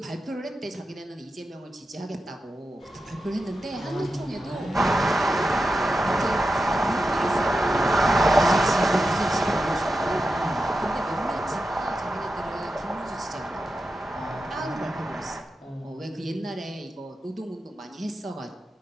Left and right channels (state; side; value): normal; both; correlation 0.90